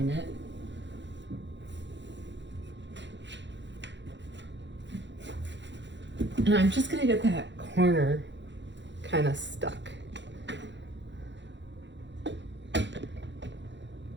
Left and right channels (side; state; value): left; late; 0.52 ms